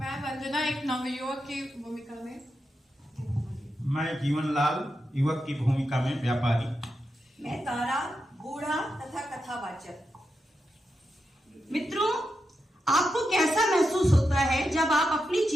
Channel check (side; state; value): both; normal; correlation 0.87